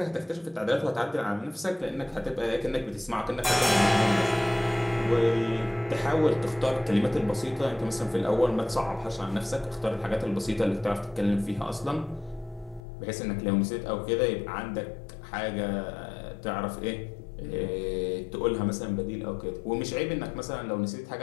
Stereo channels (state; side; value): drops out; right; at 12.8 s